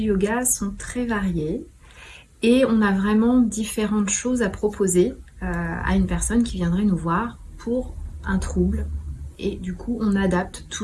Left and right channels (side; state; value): both; identical; correlation 1.00